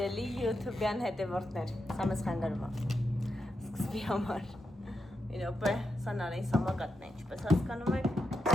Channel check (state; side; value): normal; both; correlation 0.85